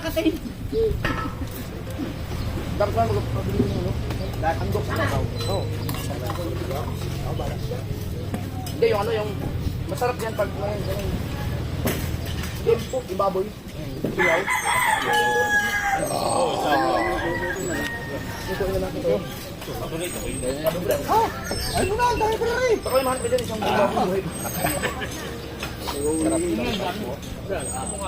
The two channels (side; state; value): both; identical; correlation 1.00